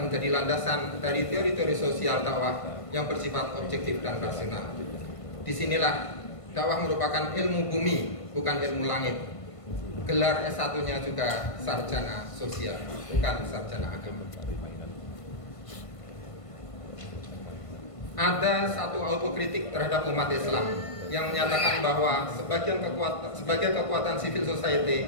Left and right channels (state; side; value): late; right; 1.5 ms